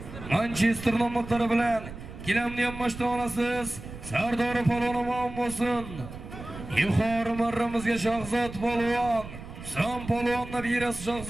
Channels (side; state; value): right; noise; rumble, 13 dB below the sound